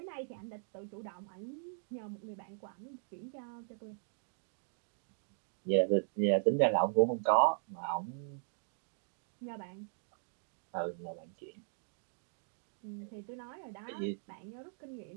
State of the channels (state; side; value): silent; left; digital silence